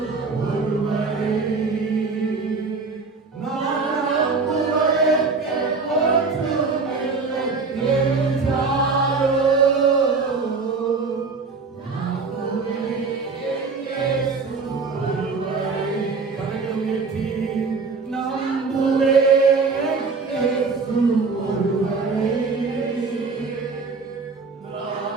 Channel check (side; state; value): left; quieter; 4.4 dB